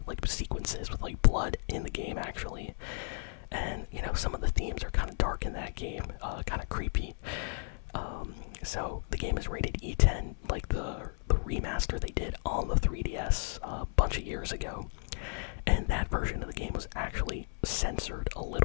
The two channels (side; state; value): right; silent; 55 dB below the other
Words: like sequences with like blood in the game actually, and you know, some of the themes are kind of dark in that game, kind of creepy. So the game is rated E10, like the remaster they did on the 3DS a bunch of years ago, and that version of the game was actually censored a